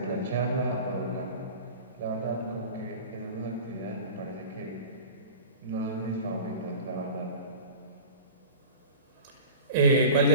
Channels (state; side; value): inverted; both; correlation -0.36